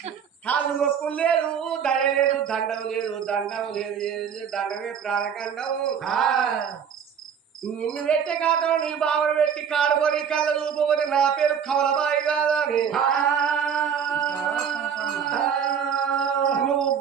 కాళ్ళు మొక్కులు లేదు దయ లేదు దండం లేదు దండమే ప్రాణకండం నిన్ను పెట్టే కాదు నీ బావను పెట్టి కాడుకొని కళ్ళ చూపబోతే నా పేరు కమలబాయి కాదా అని నువ్వు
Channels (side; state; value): left; quieter; 7.5 dB